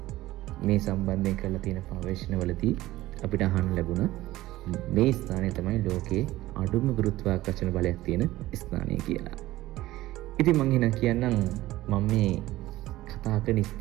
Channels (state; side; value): quieter; left; 16.6 dB